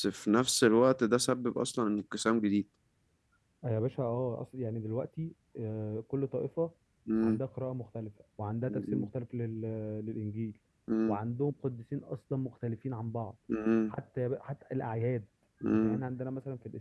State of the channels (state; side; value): identical; both; correlation 1.00